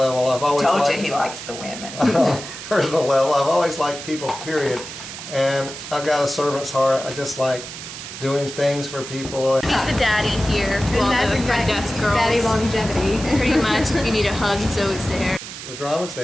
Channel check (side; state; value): right; noise; hiss, 11 dB below the sound